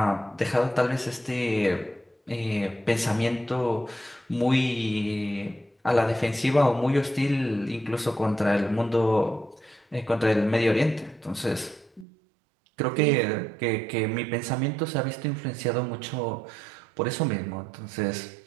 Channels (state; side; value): drops out; left; at 12.1 s